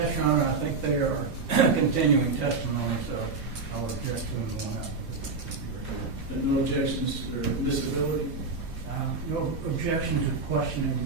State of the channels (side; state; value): left; quieter; 4.2 dB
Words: Your Honor, I think they are continuing testimony, so I'll object to them going out. No objections or disability? no objection to questioning